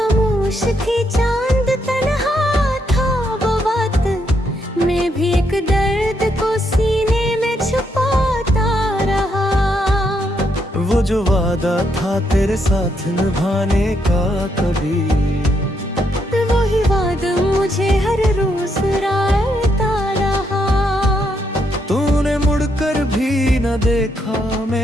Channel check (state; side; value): normal; both; correlation 0.77